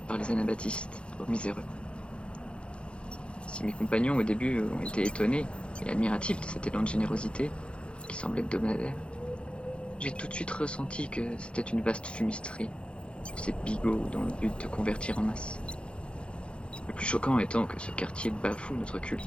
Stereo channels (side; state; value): right; late; 0.057 ms